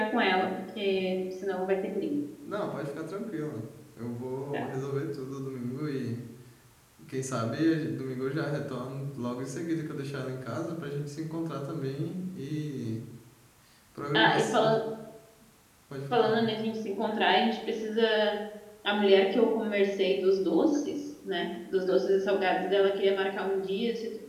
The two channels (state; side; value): identical; both; correlation 1.00